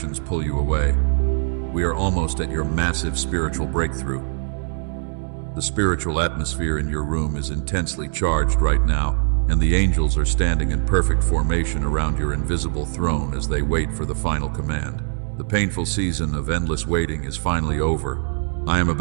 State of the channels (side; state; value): left; silent; digital silence